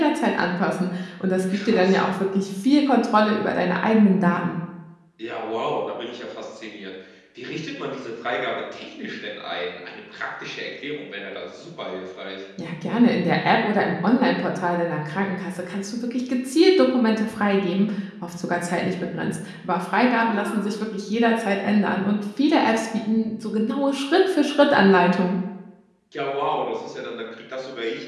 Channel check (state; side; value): identical; both; correlation 1.00